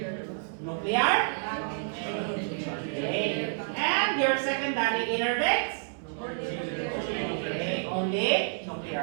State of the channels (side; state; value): left; silent; 58 dB below the other